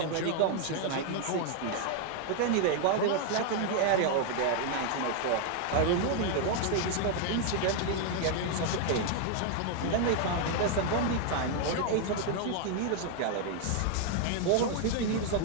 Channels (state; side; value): different; both; correlation 0.00